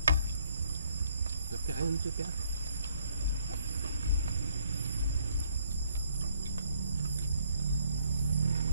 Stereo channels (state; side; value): inverted; both; correlation -0.65